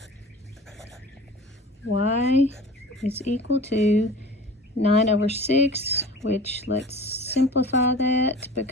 Y is equal to 9 over 6, which let's simplify that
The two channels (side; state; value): both; normal; correlation 0.40